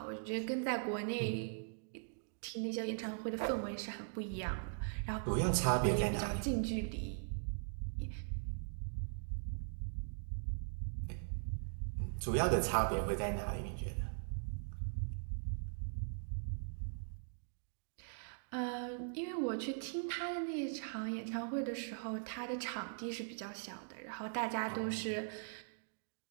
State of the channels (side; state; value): left; silent; digital silence